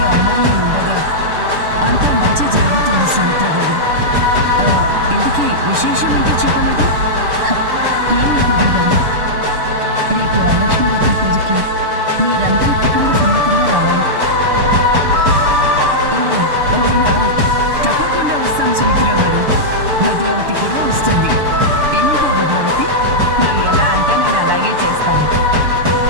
అమ్మాయిలు ఉండగా అంతా మంచి జరుగుతుంది సుమిత్ర గారు. ఇందుకీ విశేషం ఏంటో చెప్పలేదు? ఏం లేదు వదిన గారు. రేపు వరలక్ష్మి వ్రతం పూజకి మీరందరూ కుటుంబ సమేతంగా రావాలి. అవునా? తప్పకుండా వస్తాం సుమిత్ర గారు. భద్రావతి కూడా వస్తుంది. ఏమంటావు భద్రావతి? నువ్వు ఎలా అంటే నేను అలాగే చేస్తాను.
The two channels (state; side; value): late; left; 6.8 ms